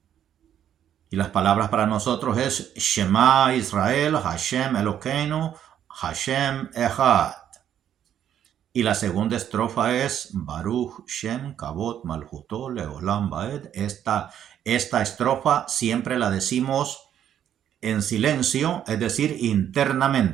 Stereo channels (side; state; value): left; quieter; 10.0 dB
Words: Y las palabras para nosotros es Shema Israel, Hashem Elokeinu, Hashem Echad. Y la segunda estrofa es Baruch Shem Kavod Malchuto Leolam Baed. Esta estrofa siempre la decimos en silencio, es decir,